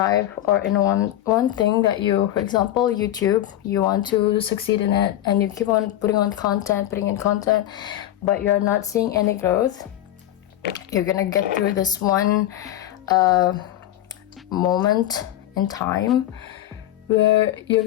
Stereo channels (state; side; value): quieter; right; 13.1 dB